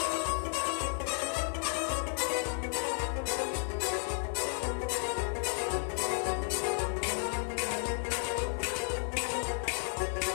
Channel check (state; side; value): silent; right; 56 dB below the other